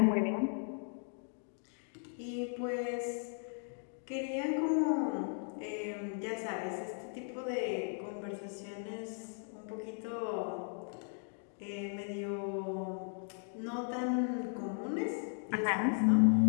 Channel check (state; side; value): silent; right; 53 dB below the other